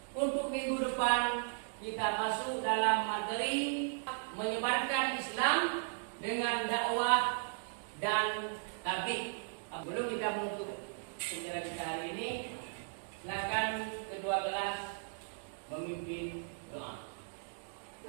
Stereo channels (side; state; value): left; silent; digital silence